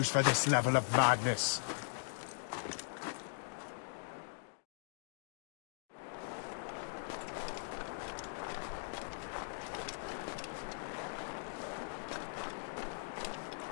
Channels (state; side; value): silent; right; digital silence